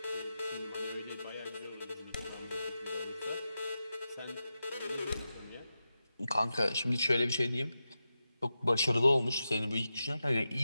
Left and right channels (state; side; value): inverted; both; correlation -0.90